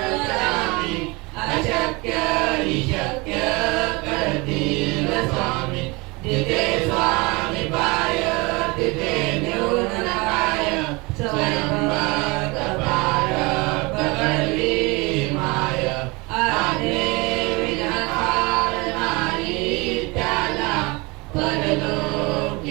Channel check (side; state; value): left; quieter; 25.9 dB